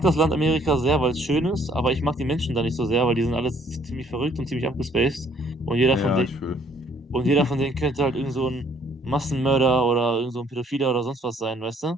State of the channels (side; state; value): both; normal; correlation 0.62